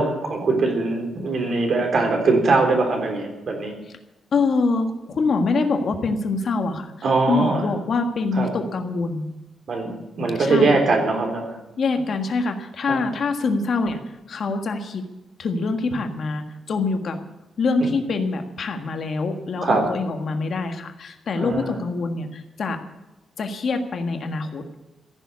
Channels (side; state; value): both; normal; correlation 0.77